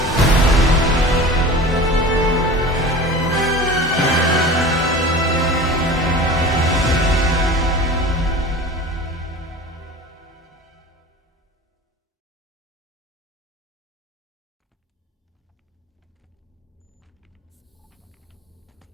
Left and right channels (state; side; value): normal; both; correlation 0.37